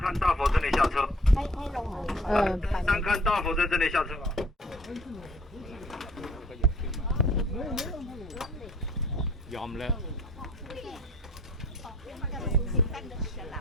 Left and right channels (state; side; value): normal; both; correlation 0.54